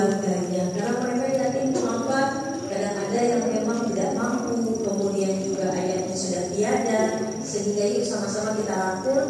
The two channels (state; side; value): identical; both; correlation 1.00